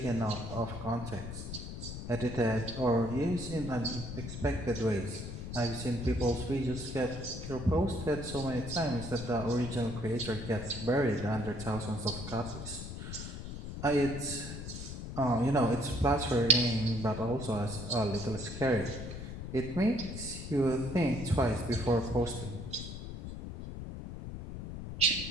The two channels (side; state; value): left; noise; rumble, 8 dB below the sound